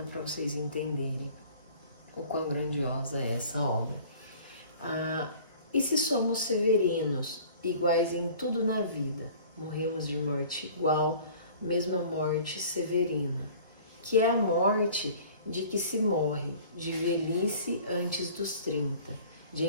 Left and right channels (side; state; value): both; inverted; correlation -0.47